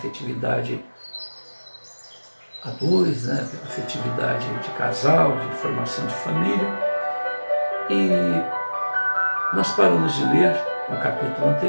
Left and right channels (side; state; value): both; inverted; correlation -1.00